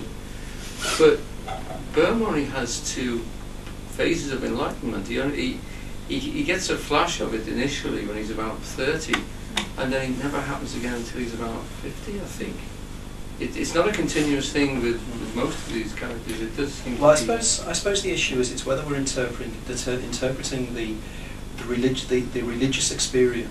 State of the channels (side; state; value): both; identical; correlation 1.00